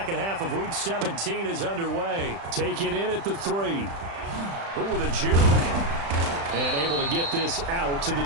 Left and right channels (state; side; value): late; left; 35 ms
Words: half of Week 17 is underway. Taken in at the 3. Ooh, the juke. And able to get this out to the